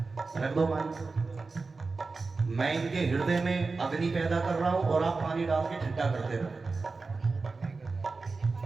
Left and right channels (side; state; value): left; quieter; 4.0 dB